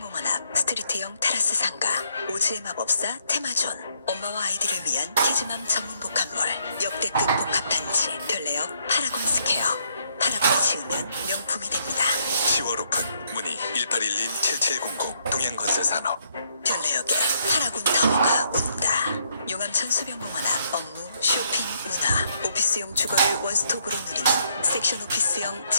앞 스트리트형 테라스 상가 오즈의 마법사 테마존. 엄마와 아이들을 위한 키즈맘 전문 복합몰 역대급 복합단지 별내역 파라곰스케어. 파라곤이 지으면 명품이 됩니다. 10월 오픈 문의 1811-7700 동양건설산업. 별내역에 파라곤 타워가 온다. 용암천 수변공원 앞 업무, 쇼핑, 문화, 오피스용 주거를 원스톱으로 누리는 섹션 오피스형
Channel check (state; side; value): inverted; both; correlation -0.71